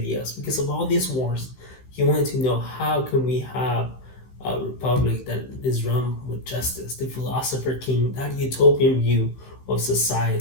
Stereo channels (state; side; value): late; right; 15 ms